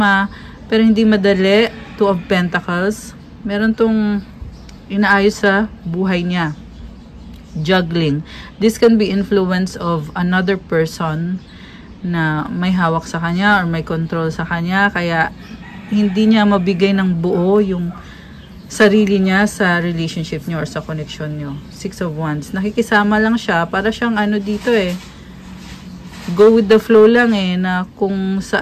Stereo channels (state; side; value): identical; both; correlation 1.00